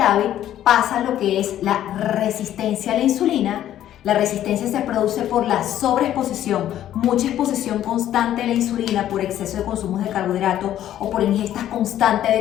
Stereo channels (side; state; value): right; quieter; 11.8 dB